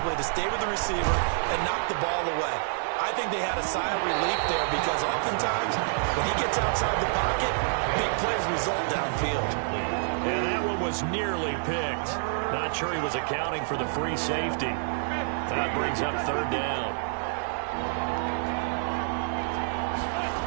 to stay with the receiver and knock the ball away? I think they had a sigh of relief there because oftentimes when he gets outside the pocket, big plays result downfield. And that one was nearly picked. Not sure he was accounting for the free safety. That brings up 3rd down.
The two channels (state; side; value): silent; left; 58 dB below the other